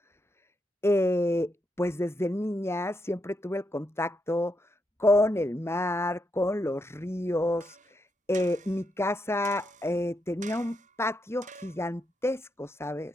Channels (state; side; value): normal; both; correlation 0.82